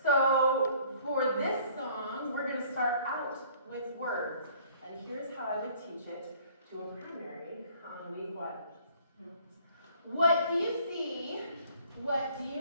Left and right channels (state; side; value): inverted; both; correlation -0.56